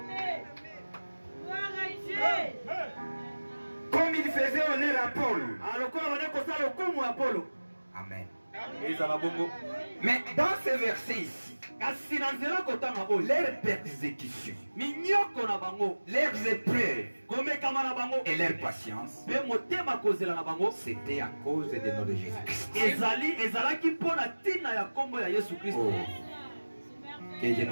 Comme il faisait honneur à Paul. Amen. Mais dans ce verset ici, leurs persécutions, leurs épreuves et leur patience, c'était à cause de notre Jésus-Christ. Oh. Que Dieu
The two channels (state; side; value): inverted; both; correlation -1.00